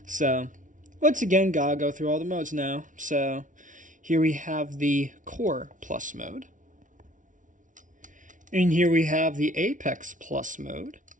So, once again, gotta go through all the modes now. So, here we have the Core Plus mode. And here we have the Apex Plus mode.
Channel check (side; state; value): left; late; 0.37 ms